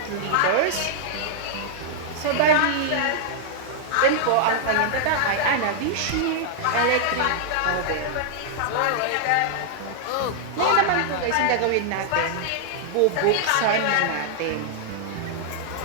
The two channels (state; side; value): different; both; correlation -0.01